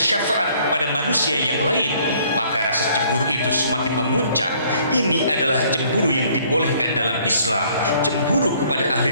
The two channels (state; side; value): inverted; both; correlation -0.61